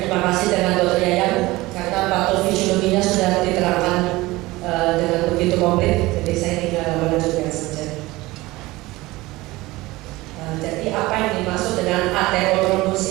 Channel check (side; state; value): left; quieter; 19.9 dB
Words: kasih dengan Dr. Yayang karena patofisiologinya sudah diterangkan dengan begitu komplit, jadi saya tinggal melanjutkan saja. Jadi apa yang dimaksud dengan